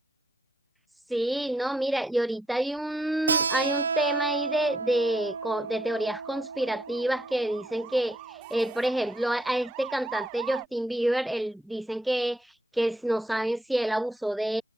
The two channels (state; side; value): normal; both; correlation 0.74